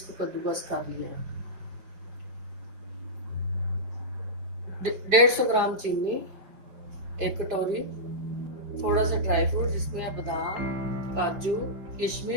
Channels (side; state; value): left; late; 5.0 ms